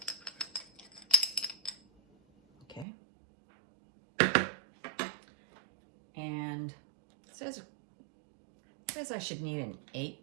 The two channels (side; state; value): left; drops out; at 2.9 s